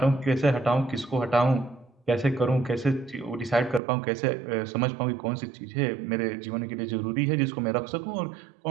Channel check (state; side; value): drops out; left; at 3.8 s